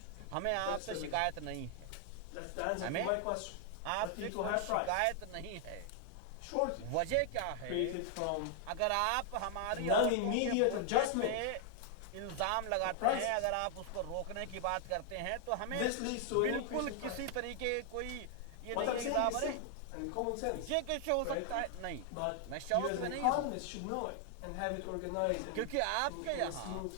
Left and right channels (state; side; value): different; both; correlation 0.00